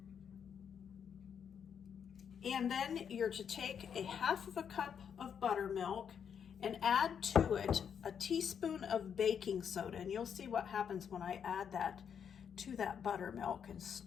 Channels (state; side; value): quieter; right; 7.7 dB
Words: and then you're to take a 1/2 cup of buttermilk and add to it a teaspoon of baking soda. And you'll see what happens when I add that to that buttermilk and